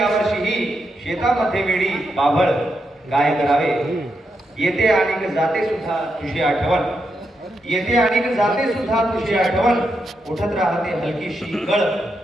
शेतामध्ये वेडी बाभळ काय करावे, येते आणि जाते सुद्धा तुझी आठवण, येते आणि जाते सुद्धा तुझी आठवण, उठत राहते हलकीशी गळ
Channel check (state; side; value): normal; both; correlation 0.83